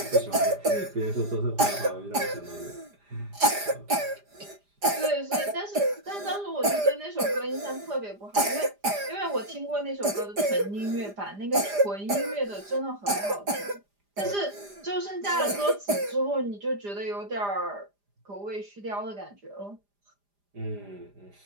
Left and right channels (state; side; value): late; left; 5.0 ms